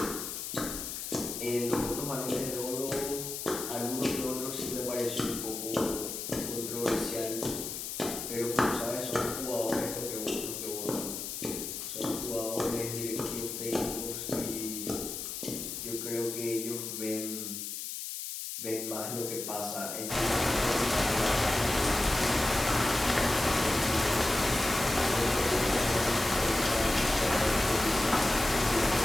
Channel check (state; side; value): noise; left; hiss, 6 dB below the sound